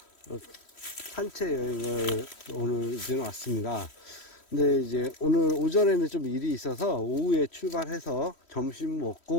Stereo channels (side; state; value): right; late; 3.1 ms